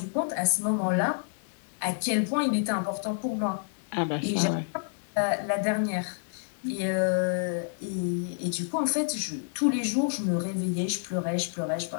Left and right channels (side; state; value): right; silent; digital silence